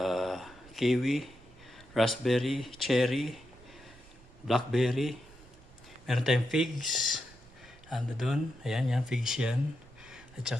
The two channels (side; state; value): right; noise; rumble, 23 dB below the sound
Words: kiwi, raspberry, cherry, blackberry. Meron tayong figs. Ando doon. Ayan, yan. Figs yan. At